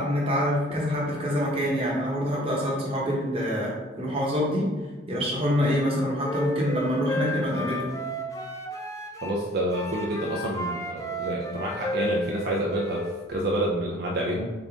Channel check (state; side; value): normal; both; correlation 0.53